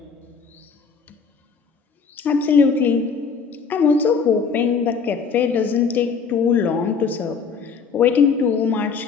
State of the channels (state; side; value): quieter; right; 5.6 dB